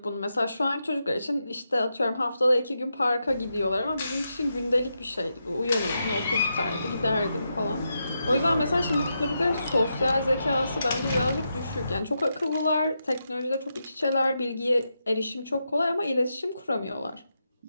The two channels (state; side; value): inverted; both; correlation -0.85